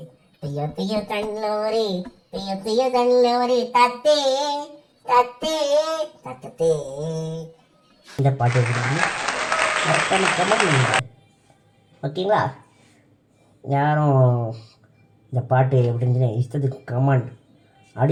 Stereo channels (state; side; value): identical; both; correlation 1.00